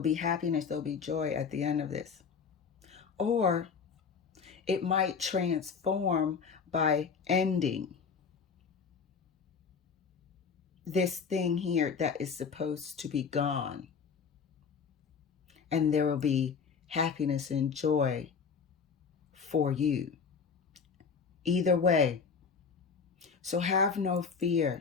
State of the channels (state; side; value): quieter; right; 5.9 dB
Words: be happiness, there will be joy at the end of this. Or it might transform by ending this thing here that is supposed to be gone. And there will be happiness and joy for you. Either way. So have no fear.